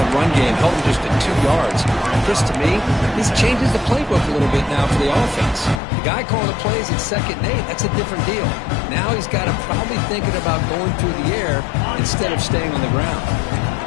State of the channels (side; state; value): right; drops out; at 5.8 s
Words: run game, held them just at 2 yards. Chris, to me, this changes the playbook a little bit now for the offense. The guy calling the plays at 2nd and 8, that's a different deal. Now he's got to probably thinking about going through the air instead of staying on the ground.